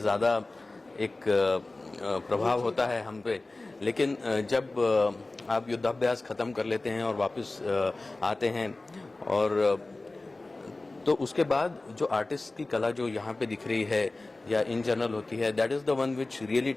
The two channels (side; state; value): right; quieter; 3.1 dB